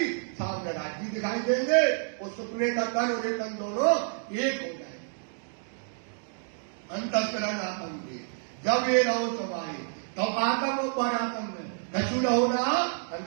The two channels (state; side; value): silent; left; 59 dB below the other